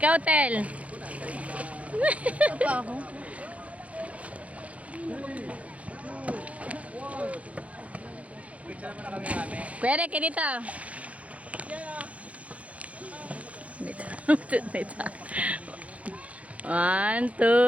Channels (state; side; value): late; left; 0.066 ms